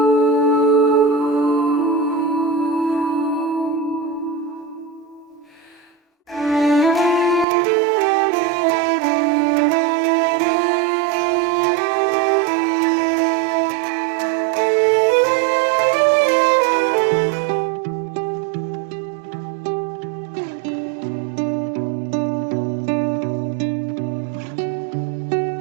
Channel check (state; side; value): drops out; left; at 7.5 s